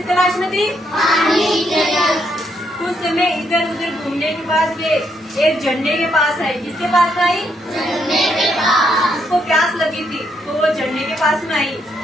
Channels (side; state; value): both; normal; correlation 0.76